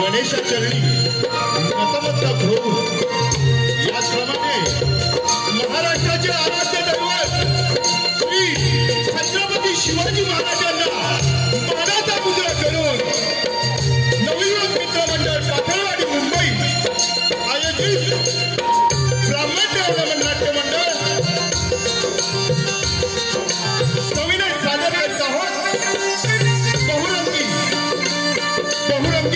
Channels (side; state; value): both; identical; correlation 1.00